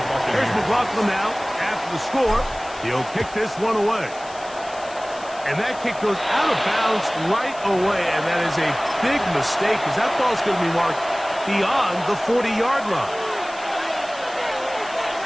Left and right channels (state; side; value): noise; left; hiss, 19 dB below the sound